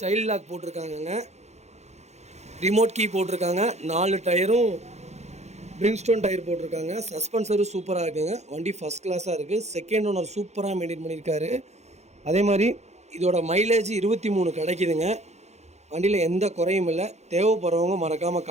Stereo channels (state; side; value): late; left; 0.32 ms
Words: சைல்ட் லாக் போட்டிருக்காங்கங்க. ரிமோட் கீ போட்டிருக்காங்க. 4 டயரும் பிரிங்ஸ்டோன் டயர் போட்டிருக்காங்க. சஸ்பென்சரும் சூப்பராக இருக்குங்க. வண்டி ஃபஸ்ட் கிளாஸாக இருக்குது. செகண்ட் ஓனர் சூப்பராக மெயின்டைன் பண்ணியிருக்காரு. அதே மாதிரி இதோட மைலேஜ் 23 கிடைக்குதுங்க. வண்டியில் எந்த குறையும் இல்லை. தேவைப்படுறவங்க மறக்காமல்